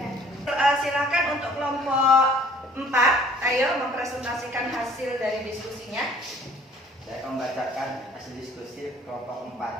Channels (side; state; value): both; normal; correlation 0.54